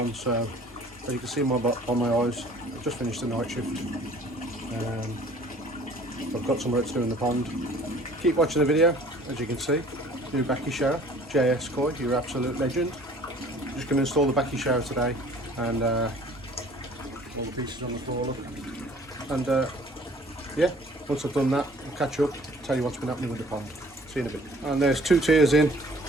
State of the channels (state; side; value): normal; both; correlation 0.52